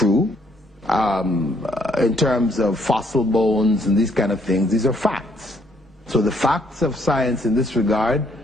in terms of fossil bones and these kind of things, these are facts. So the facts of science in this regard,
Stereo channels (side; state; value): both; normal; correlation 0.68